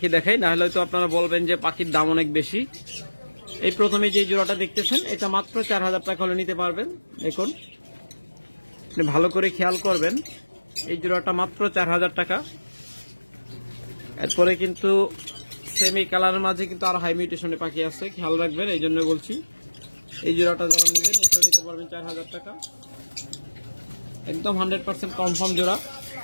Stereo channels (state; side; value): inverted; both; correlation -1.00